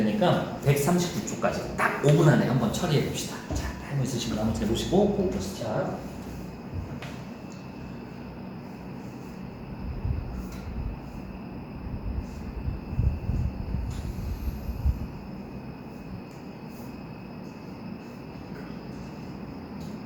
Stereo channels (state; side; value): identical; both; correlation 1.00